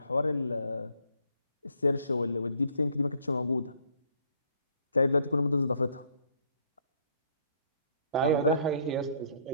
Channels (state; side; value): inverted; both; correlation -0.63